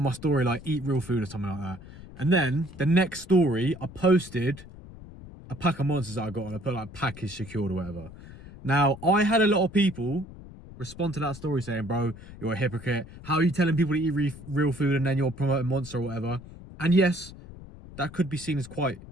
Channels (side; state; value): left; noise; rumble, 17 dB below the sound